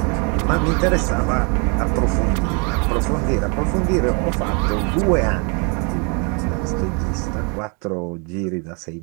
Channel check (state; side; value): quieter; left; 34.8 dB